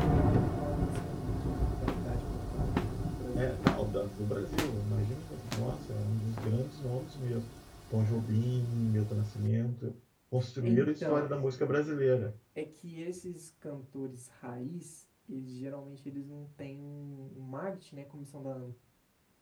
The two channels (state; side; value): identical; both; correlation 1.00